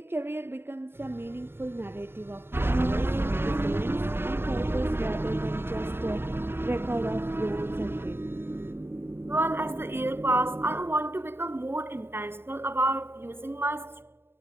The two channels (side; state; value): left; late; 0.11 ms